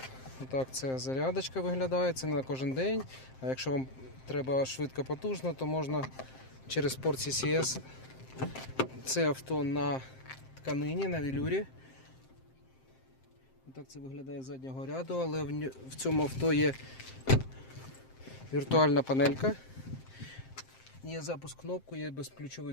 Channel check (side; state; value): right; late; 7.6 ms